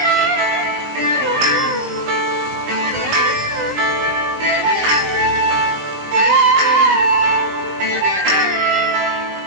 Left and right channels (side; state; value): left; late; 20 ms